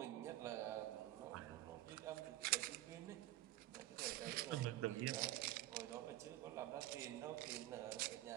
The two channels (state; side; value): quieter; left; 15.6 dB